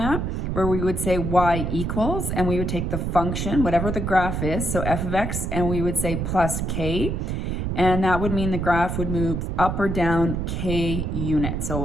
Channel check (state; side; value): noise; right; rumble, 2 dB below the sound